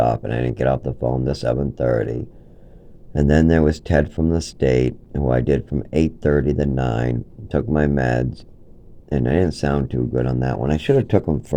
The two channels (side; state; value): both; identical; correlation 1.00